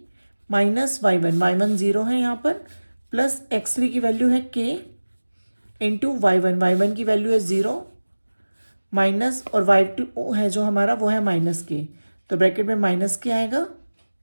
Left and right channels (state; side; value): inverted; both; correlation -1.00